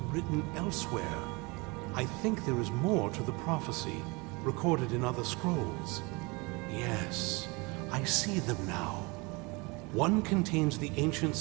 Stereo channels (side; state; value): left; quieter; 27.1 dB